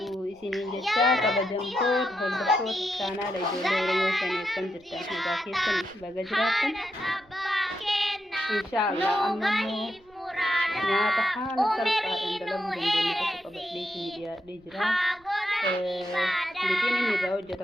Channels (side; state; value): right; noise; rumble, 30 dB below the sound